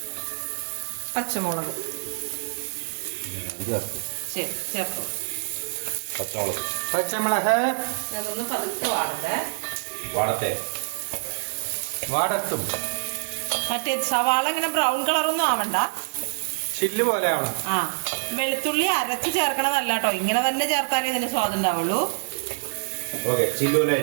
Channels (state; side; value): silent; left; digital silence